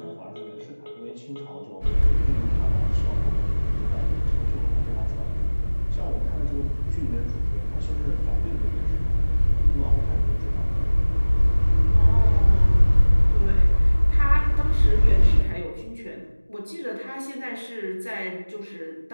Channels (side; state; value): both; inverted; correlation -1.00